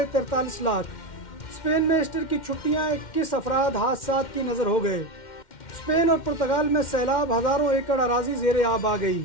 लाख। स्पेन में ईस्टर की छुट्टियां 21 अफराद हादसात की नज़र हो गए। स्पेन और पुर्तगाल में सैलाब, हज़ारों एकड़ अराजी ज़ेरे आब आ गई।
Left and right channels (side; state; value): right; late; 2.1 ms